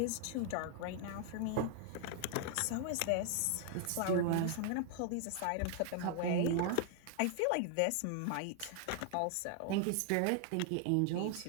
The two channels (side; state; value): both; different; correlation 0.00